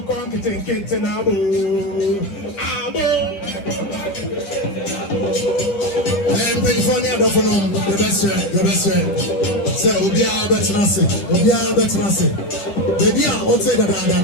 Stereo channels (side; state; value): right; late; 10 ms